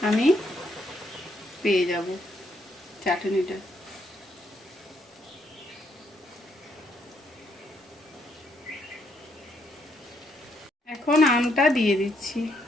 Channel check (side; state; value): both; normal; correlation 0.74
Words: আমি পেয়ে যাব চাটনিটা। এখন আমটা দিয়ে দিচ্ছি,